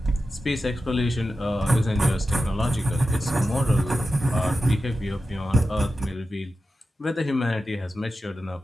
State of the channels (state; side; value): normal; both; correlation 0.92